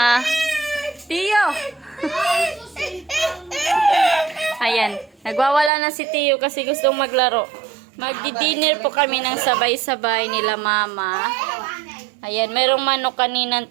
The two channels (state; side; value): drops out; left; at 5.7 s